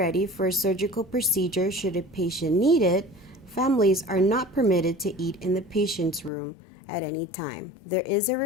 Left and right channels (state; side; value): drops out; right; at 6.3 s